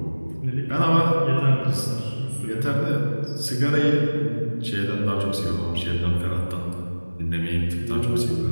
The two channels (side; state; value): both; inverted; correlation -1.00